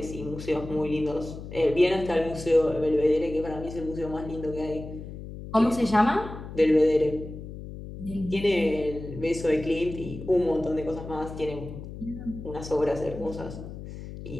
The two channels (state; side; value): noise; left; hum, 11 dB below the sound